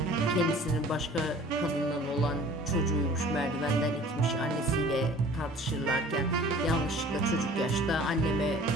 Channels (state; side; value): normal; both; correlation 0.48